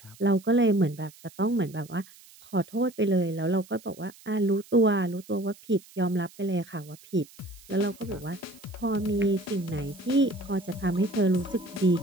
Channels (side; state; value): right; noise; hiss, 23 dB below the sound